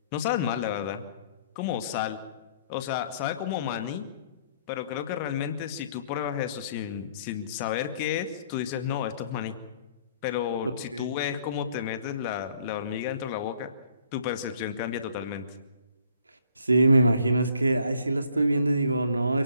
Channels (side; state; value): both; inverted; correlation -0.61